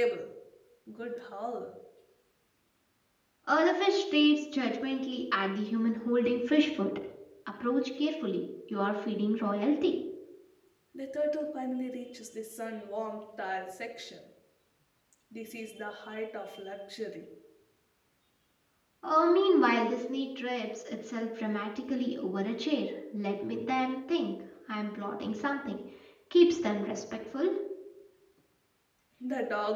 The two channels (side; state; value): both; identical; correlation 1.00